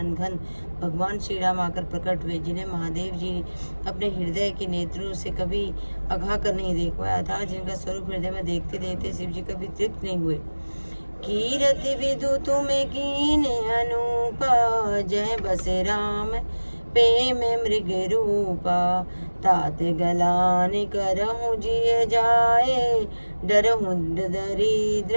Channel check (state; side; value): inverted; both; correlation -1.00